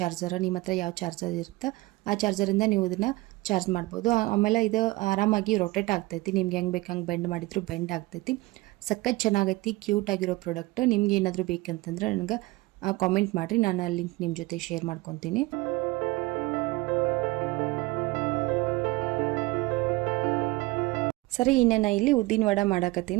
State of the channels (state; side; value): quieter; left; 21.3 dB